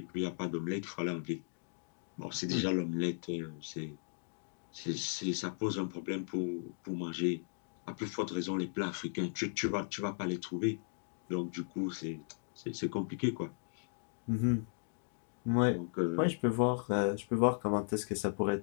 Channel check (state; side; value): silent; right; digital silence